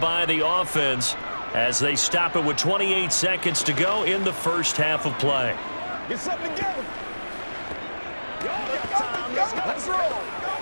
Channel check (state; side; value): inverted; both; correlation -1.00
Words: the offense as they stop it with 28 seconds to go in the first half of play. Get something together. Let's roll.